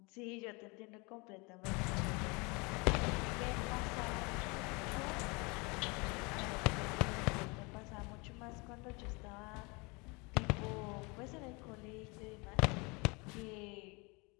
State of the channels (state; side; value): quieter; right; 28.3 dB